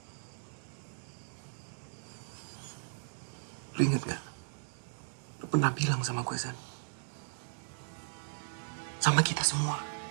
Lu inget gak? Lu pernah bilang sama gue, Zan. Sama kita semua.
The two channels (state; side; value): silent; left; digital silence